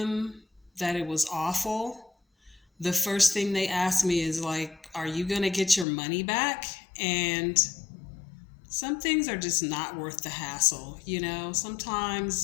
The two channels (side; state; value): right; drops out; at 5.9 s